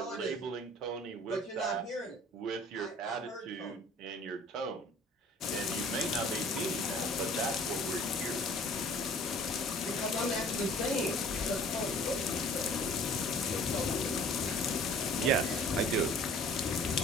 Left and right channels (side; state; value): both; normal; correlation 0.51